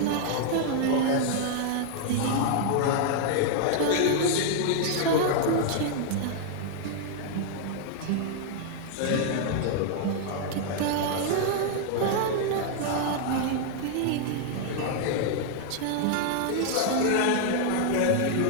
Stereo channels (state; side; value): different; both; correlation -0.01